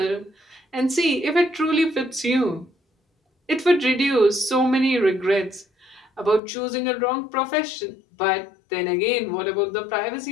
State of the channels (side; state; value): right; drops out; at 6.4 s